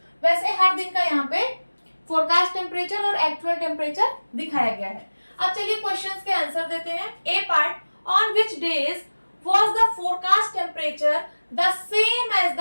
वैसे हर दिन का यहाँ पे फोरकास्ट टेम्परेचर और एक्चुअल टेम्परेचर दिखाया गया है। अब चलिए क्वेश्चंस के आंसर देते हैं। A part, on which days was the forecast temperature the same as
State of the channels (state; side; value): inverted; both; correlation -1.00